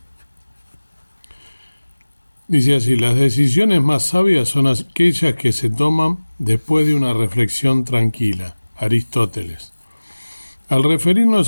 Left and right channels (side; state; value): both; inverted; correlation -1.00